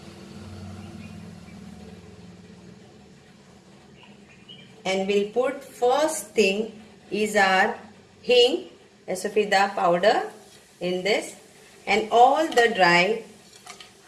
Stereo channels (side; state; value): both; identical; correlation 1.00